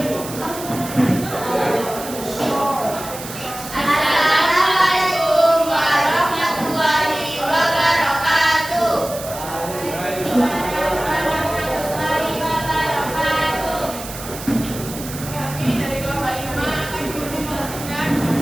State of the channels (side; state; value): right; noise; hiss, 12 dB below the sound